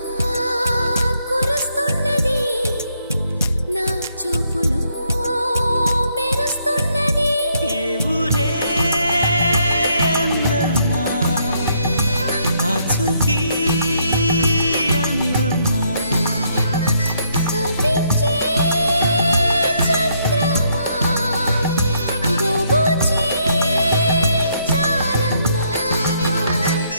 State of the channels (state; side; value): inverted; both; correlation -0.72